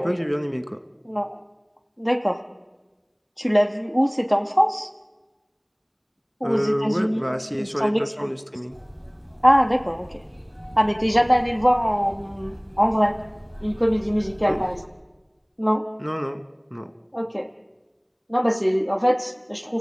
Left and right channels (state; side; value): identical; both; correlation 1.00